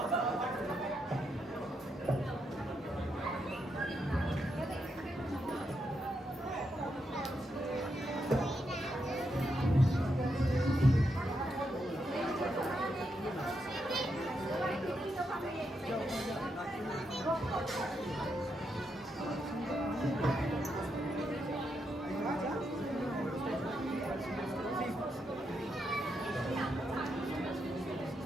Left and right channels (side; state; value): both; normal; correlation 0.82